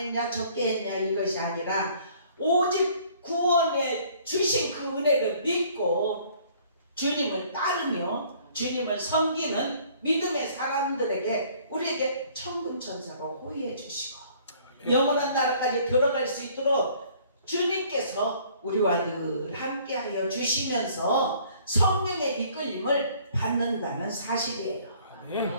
적게 했냐 이것이 아니라 오직 구원에 주신 그 은혜를 믿고 주님을 따르며 주님을 섬기는 믿음의 사람들에게 우리에게 천군 천사가 호의해 주시고 영원한 나라까지 들어갈 수 있도록 주님께서 우리와 늘 함께하여 주시면서 성령의 이끌림을 받는다는 사실이에요.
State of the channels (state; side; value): inverted; both; correlation -0.57